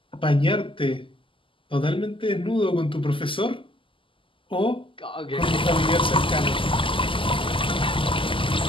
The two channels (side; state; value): right; late; 0.25 ms